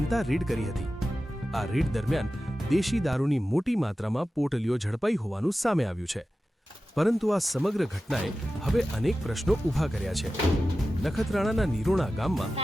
રેડ કરી હતી। આ રેડ દરમિયાન દેશી દારૂની મોટી માત્રામાં પોટલીઓ ઝડપાઈ હોવાનું સામે આવ્યું છે, પરંતુ આ સમગ્ર ઘટનાએ હવે અનેક પ્રશ્નો ઊભા કર્યા છે। નખત્રાણાના નિરોણા ગામમાં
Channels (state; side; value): normal; both; correlation 0.94